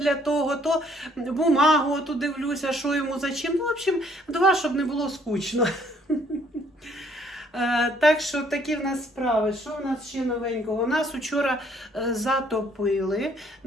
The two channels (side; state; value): both; normal; correlation 0.63